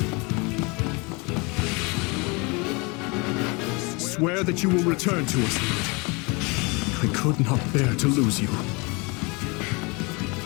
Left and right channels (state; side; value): quieter; right; 28.6 dB